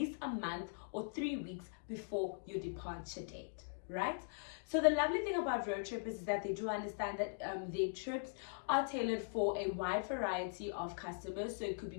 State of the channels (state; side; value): quieter; right; 39.8 dB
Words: a month or 3 weeks before your departure date, right? So the lovely thing about road trippers is that they do understand that their trips are tailored for a wide variety of customers. So it could be